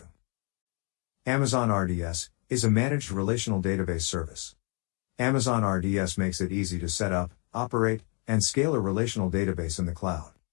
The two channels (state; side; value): quieter; right; 35.7 dB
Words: Amazon RDS is a managed relational database service. Amazon RDS makes it easy to set up, operate, and scale a relational database in the cloud.